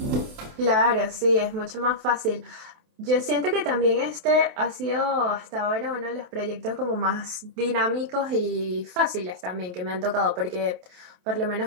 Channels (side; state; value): left; late; 28 ms